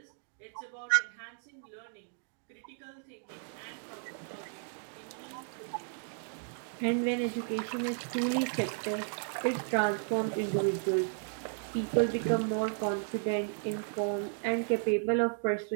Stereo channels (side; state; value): left; silent; digital silence